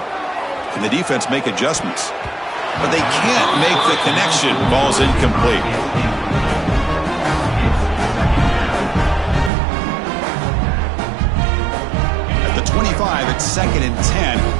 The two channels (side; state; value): left; drops out; at 9.5 s